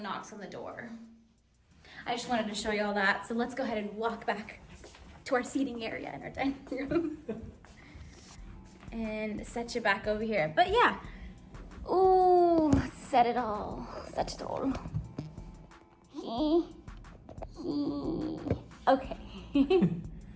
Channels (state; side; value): identical; both; correlation 1.00